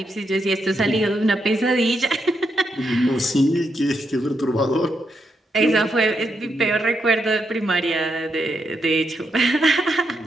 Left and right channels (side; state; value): both; normal; correlation 0.81